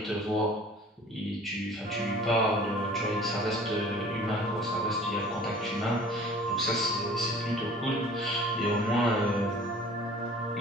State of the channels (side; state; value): both; normal; correlation 0.47